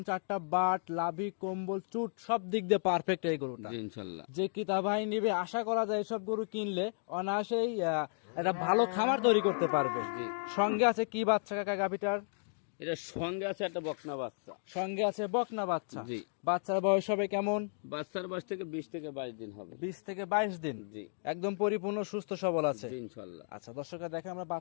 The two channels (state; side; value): silent; right; digital silence